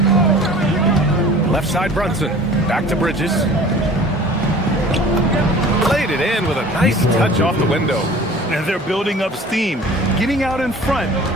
Left side Brunson. Back to Bridges. Played it in with a nice touch off the window. And they're building up steam, getting out in front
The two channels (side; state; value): both; normal; correlation 0.45